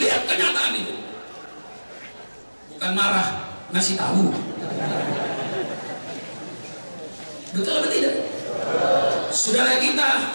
kenyataan itu. Bukan marah, ngasih tahu. Betul atau tidak? Saudara kita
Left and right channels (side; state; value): both; inverted; correlation -1.00